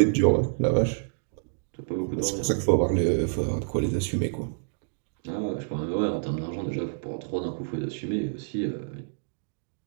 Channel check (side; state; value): left; silent; digital silence